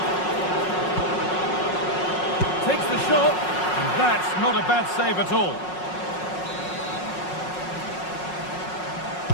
Takes the shot, and that's not a bad save at all.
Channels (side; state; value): right; late; 5.5 ms